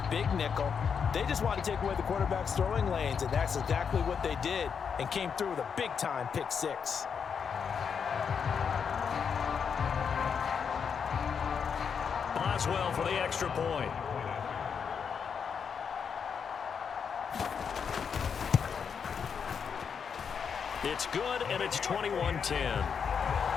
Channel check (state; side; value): quieter; right; 6.7 dB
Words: big nickel. They just wanted to take away the quarterback's throwing lanes, and that's exactly what they did, and came through with a big-time pick 6. Boswell for the extra point. It's good, and it's 21-10. A